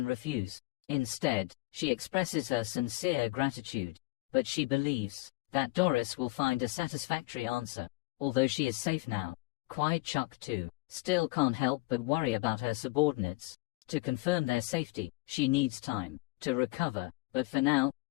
refuse. Instead, she expresses her sincere gratitude, but she believes that Doris will find a satisfactory answer. Although she is safe now, Kwai Chuk too still can't help but worry about her subordinates. To confirm their safety, she needs time to recover, but for now,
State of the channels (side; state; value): right; quieter; 22.8 dB